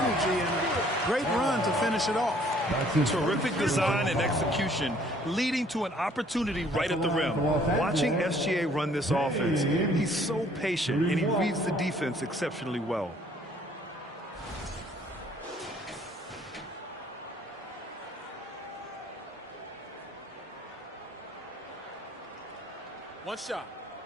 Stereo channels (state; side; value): normal; both; correlation 0.60